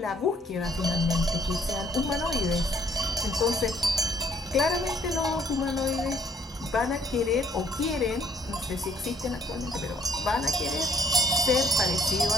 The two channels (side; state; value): both; normal; correlation 0.63